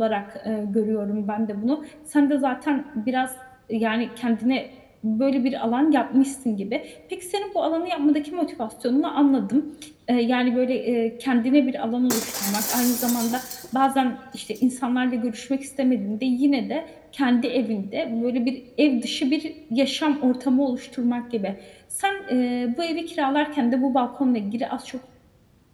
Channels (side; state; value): both; identical; correlation 1.00